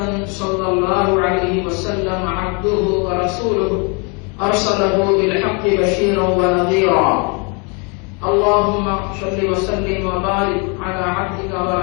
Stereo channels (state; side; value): quieter; right; 33.6 dB